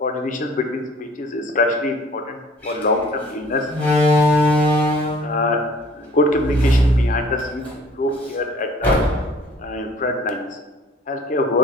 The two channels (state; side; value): normal; both; correlation 0.52